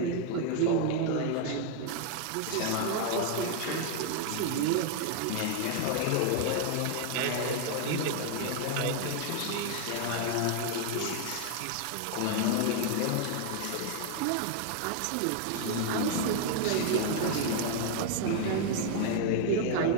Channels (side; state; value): both; different; correlation 0.00